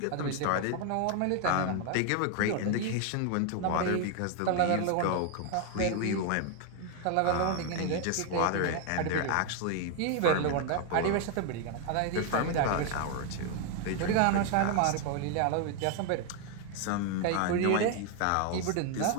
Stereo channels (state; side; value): different; both; correlation 0.01